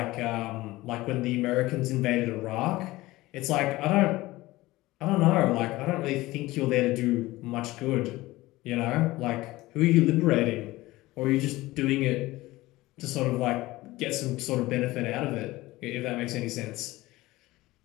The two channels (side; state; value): right; quieter; 18.8 dB